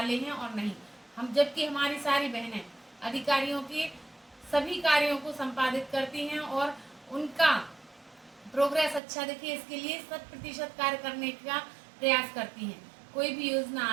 हैं और नहीं। हम जबकि हमारी सारी बहनें अधिकारियों के सभी कार्यों को संपादित करती हैं और उनका प्रोग्रेस अच्छा दिखे, इसके लिए 100% कार्य करने का प्रयास करती हैं। कोई भी योजना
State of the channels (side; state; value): left; drops out; at 9.0 s